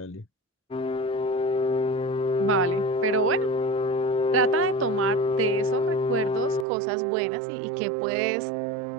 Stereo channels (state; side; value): drops out; left; at 6.7 s